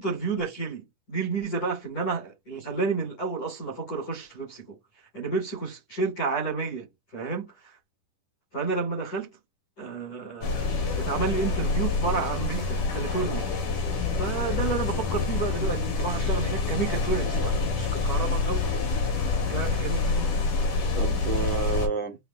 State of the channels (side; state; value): right; late; 10 ms